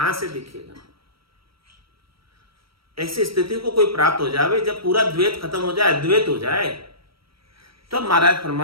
से दिखेगा? ऐसी स्थिति को कोई प्राप्त हो जाए जब पूरा द्वैत खत्म हो जाए, द्वैत हो जाए, तो महाराज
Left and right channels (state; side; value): late; left; 0.75 ms